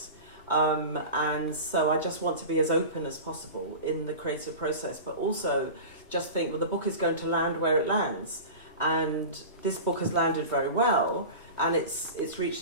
And so I just want to be as open as possible in the creative process, but also just think, well, the book is going to land where it lands. And this book has landed very well, and it's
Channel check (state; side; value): inverted; both; correlation -0.32